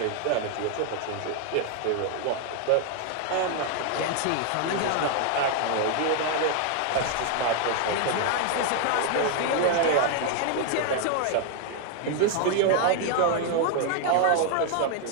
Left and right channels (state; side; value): different; both; correlation 0.00